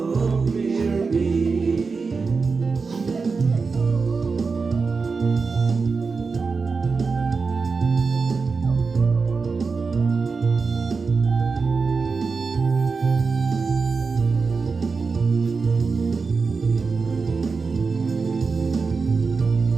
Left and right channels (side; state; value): left; quieter; 4.7 dB